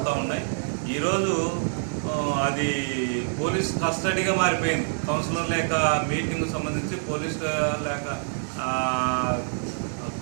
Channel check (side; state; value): left; silent; 61 dB below the other